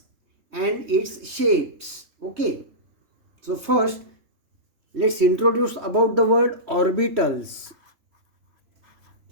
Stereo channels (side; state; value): left; late; 3.4 ms